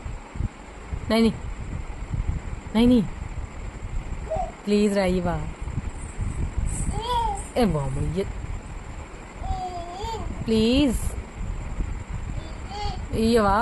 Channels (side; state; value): both; identical; correlation 1.00